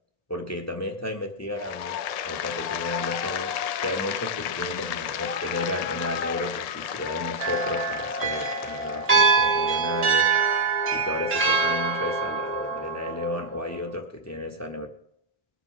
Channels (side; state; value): right; late; 1.7 ms